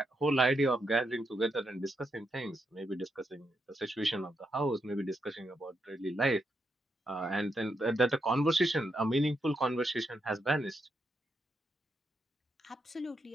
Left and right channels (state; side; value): normal; both; correlation 0.81